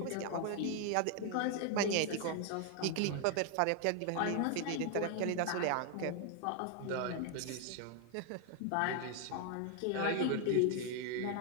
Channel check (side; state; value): both; different; correlation 0.00